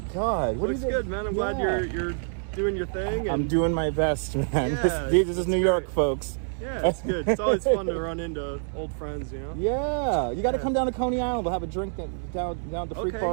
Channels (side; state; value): left; silent; 60 dB below the other